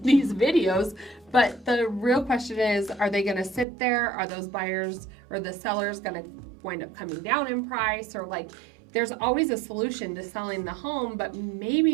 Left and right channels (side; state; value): left; drops out; at 3.7 s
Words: these videos. But the real question is, are they going to sit there? Are those buyers or the sellers going to wind up coming down in price? Or like, there's always a solution to selling the home, but